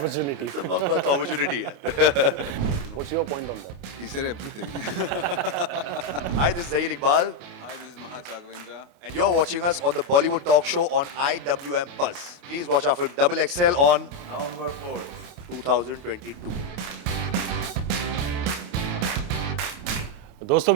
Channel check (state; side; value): late; left; 28 ms